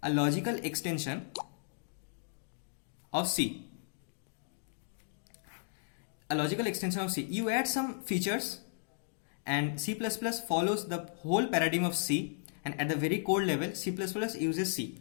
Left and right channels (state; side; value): silent; right; digital silence